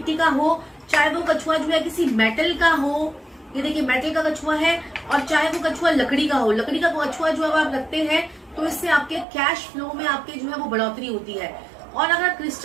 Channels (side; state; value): left; drops out; at 9.2 s